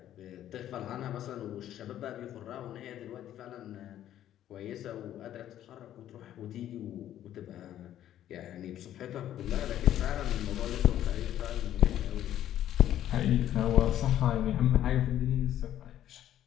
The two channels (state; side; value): quieter; right; 11.8 dB